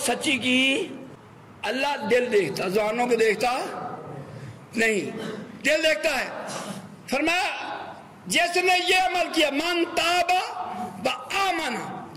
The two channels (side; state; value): both; identical; correlation 1.00